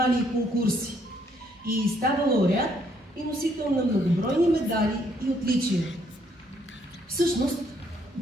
и конкурси и става лауреат и носител на многобройни медали и отличия. Всъщност,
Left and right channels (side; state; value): both; normal; correlation 0.69